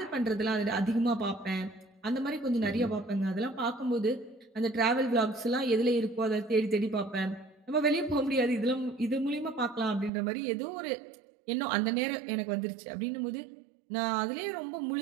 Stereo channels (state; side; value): drops out; left; at 10.1 s